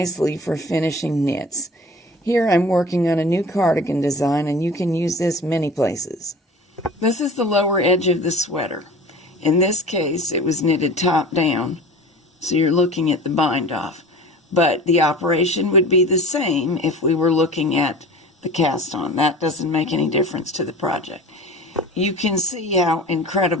for finishing knits. Here I'm working on a new cardigan design, and you can use this many places. This is the lower edge of the sweater. In this case, it was knitted top down, so you're looking at the bind off. But the operation would be the same if we were looking at the cast on. That doesn't make any difference to the project. You can see how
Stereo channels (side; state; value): both; normal; correlation 0.39